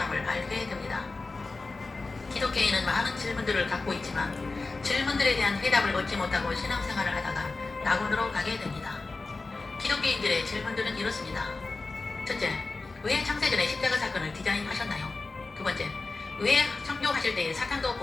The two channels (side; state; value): right; quieter; 3.6 dB